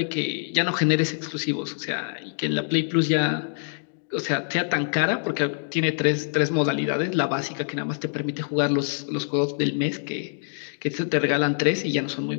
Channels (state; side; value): silent; right; digital silence